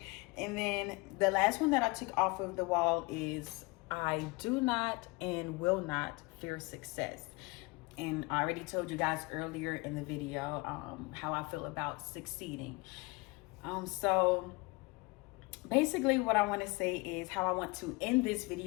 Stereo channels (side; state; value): right; quieter; 25.7 dB